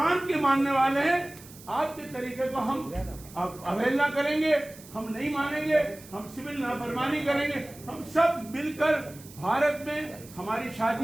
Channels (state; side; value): noise; right; hiss, 20 dB below the sound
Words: के मानने वाले हैं। आपके तरीके को हम अवहेलना करेंगे, हम नहीं मानेंगे, हम सिविल नाफरमानी करेंगे। हम सब मिलकर भारत में हमारी